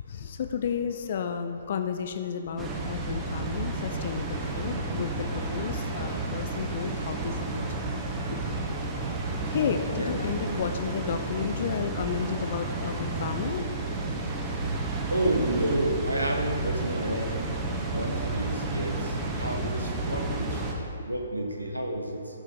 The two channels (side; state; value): both; inverted; correlation -0.51